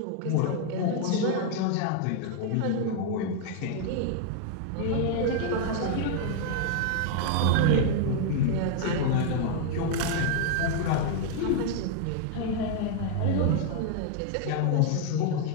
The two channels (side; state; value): both; different; correlation 0.00